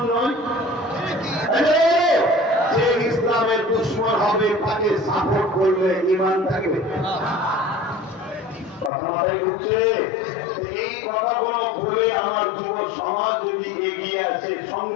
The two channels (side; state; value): right; drops out; at 8.9 s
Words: নয়? যে ইসলামের দুশমন হবে তাকে সাপোর্ট করলে ঈমান থাকবে? কথা মাথায় ঢুকছে? এই কথাগুলো ভুলে আমার যুব সমাজ যদি এগিয়ে আসে,